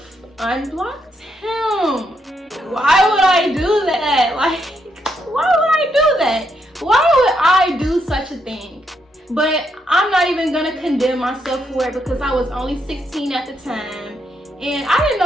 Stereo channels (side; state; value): both; normal; correlation 0.78